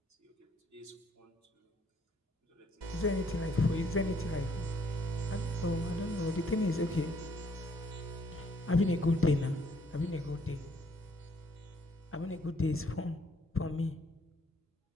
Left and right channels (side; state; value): both; normal; correlation 0.66